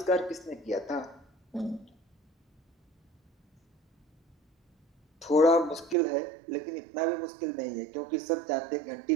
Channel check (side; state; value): left; drops out; at 6.0 s